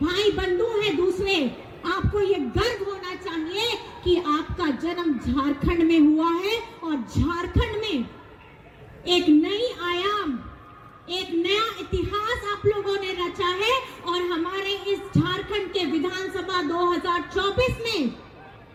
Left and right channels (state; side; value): identical; both; correlation 1.00